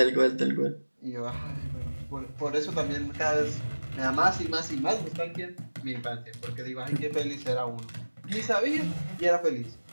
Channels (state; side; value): inverted; both; correlation -1.00